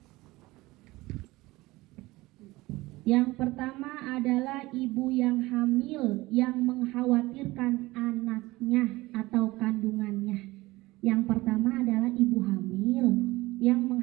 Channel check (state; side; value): quieter; left; 20.0 dB